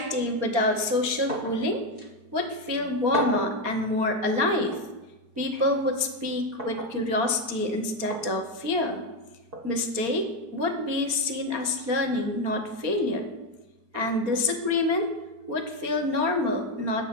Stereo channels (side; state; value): left; late; 4.3 ms